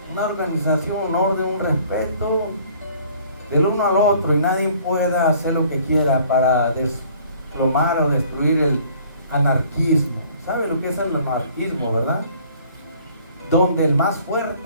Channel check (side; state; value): both; inverted; correlation -0.56